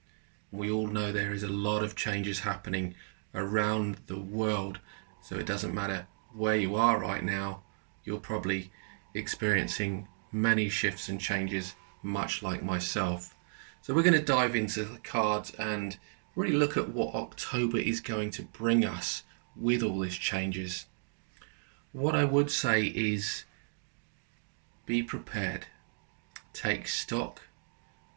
We all know there is a lot of changes happening around the world, so it doesn't matter where you are right now, you're probably experiencing many shifts and changes, much like myself. So we're going to dive into the cards and really look at what October is going to bring us with all these changes. What I would say is be prepared, take stock,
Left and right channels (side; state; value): left; silent; digital silence